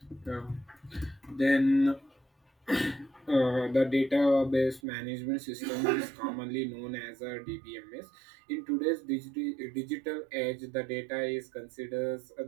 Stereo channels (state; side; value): drops out; left; at 4.8 s